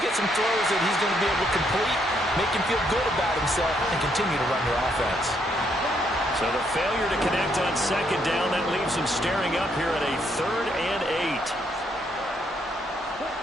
get some throws that he's going to be able to complete, make him feel good about himself, and continue to run your offense. So the failure to connect on 2nd down, that leaves him staring up here at a 3rd and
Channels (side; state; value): both; normal; correlation 0.73